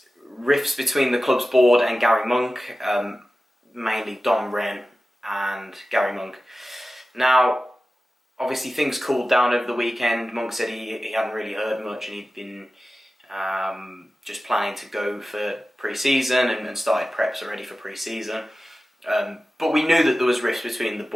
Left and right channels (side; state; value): both; normal; correlation 0.95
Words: rifts between the club's board and Garry Monk, mainly Dom Wren and Garry Monk. Now, obviously things cooled down over the weekend. Monk said he hadn't really heard much and he'd been just planning to go for pre-season and started preps already for pre-season. But we knew that there was rifts between the